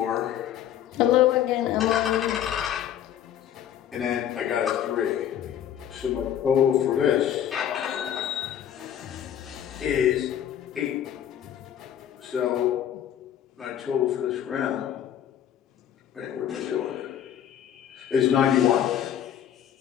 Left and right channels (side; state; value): right; quieter; 10.2 dB